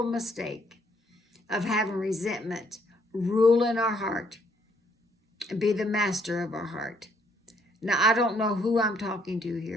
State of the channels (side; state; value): both; normal; correlation 0.68